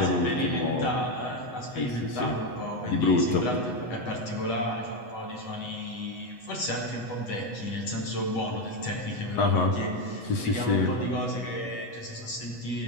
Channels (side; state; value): right; late; 8.1 ms